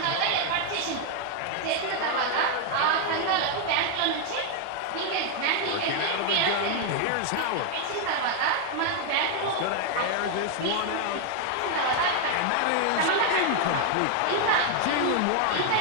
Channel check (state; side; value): different; both; correlation 0.00